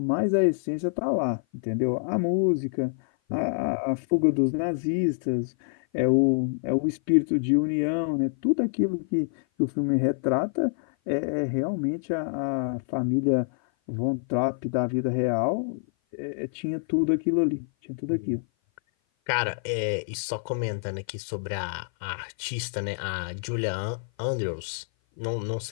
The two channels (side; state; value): right; silent; 56 dB below the other